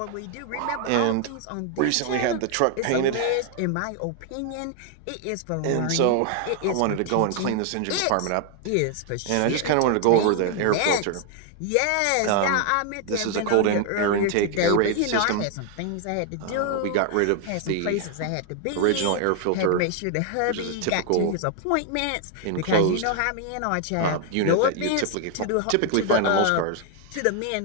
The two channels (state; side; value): different; both; correlation 0.00